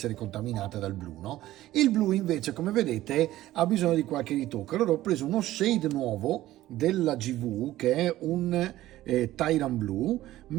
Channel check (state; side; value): quieter; left; 15.1 dB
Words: contaminate dal blu, no? Il blu invece, come vedete, ha bisogno di qualche ritocco. Allora ho preso uno shade nuovo della GV che è un Tyrant Blue,